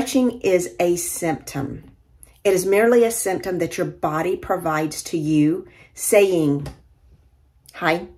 is a symptom. It is merely a symptom that your body provides to you saying, hi,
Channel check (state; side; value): identical; both; correlation 1.00